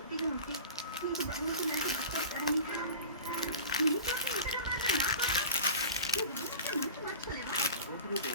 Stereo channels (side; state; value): both; inverted; correlation -0.36